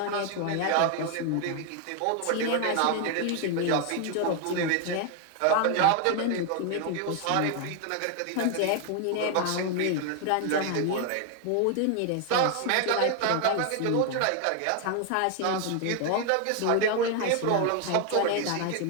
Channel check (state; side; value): different; both; correlation 0.01